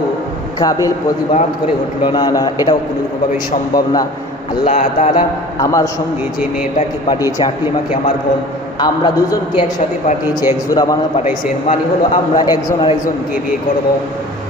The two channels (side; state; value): both; normal; correlation 0.43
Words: কাবিল প্রতিবাদ করে উঠল, না না, এটাও কোনোভাবেই সম্ভব না। আল্লাহ তাআলা আমার সঙ্গে যে মেয়েটাকে পাঠিয়েছে আকলিমাকে, আমার বোন, আমরা দুজনকে একসাথে পাঠিয়েছে, এক জোড়া বানা পাঠাইছেন, মানে হলো আমরা একজন আরেকজনকে বিয়ে করব।